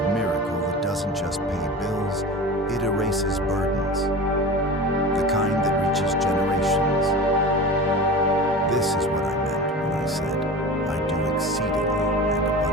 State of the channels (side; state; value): both; normal; correlation 0.33